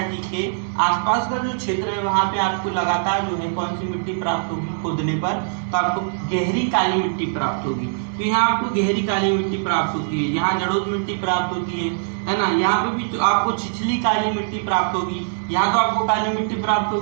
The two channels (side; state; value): left; silent; 64 dB below the other